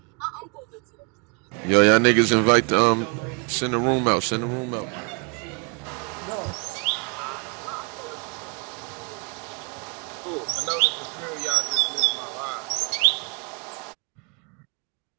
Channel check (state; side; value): quieter; left; 34.4 dB